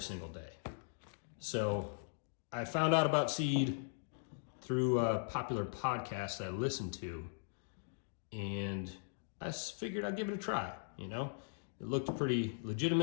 single day. So I found out about Seed through a popular podcast I listened to, and I figured I'd give it a try, It looked pretty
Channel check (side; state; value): right; silent; digital silence